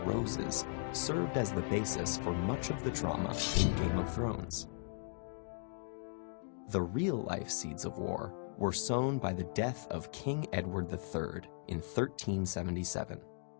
served as the basis for much of the drama in Game of Thrones. The real-life seeds of war were sown by the death of King Edward III in 1377.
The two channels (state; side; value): silent; right; digital silence